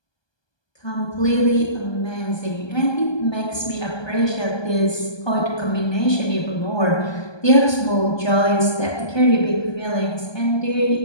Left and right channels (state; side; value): late; right; 1.2 ms